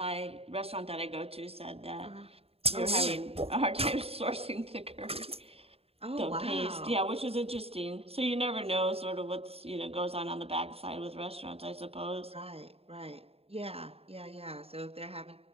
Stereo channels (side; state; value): left; late; 0.29 ms